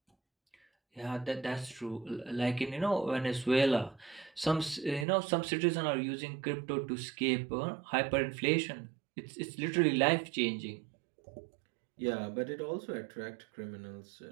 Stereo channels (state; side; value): drops out; left; at 5.1 s